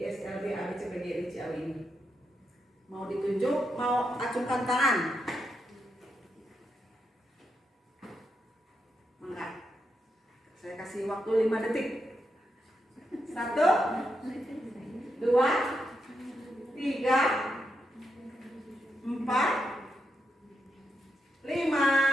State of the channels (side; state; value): both; normal; correlation 0.83